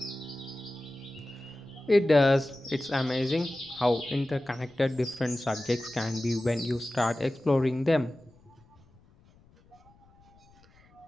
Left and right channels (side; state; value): left; noise; rumble, 29 dB below the sound